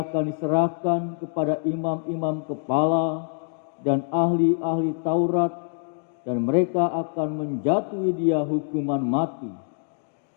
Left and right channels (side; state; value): right; silent; 62 dB below the other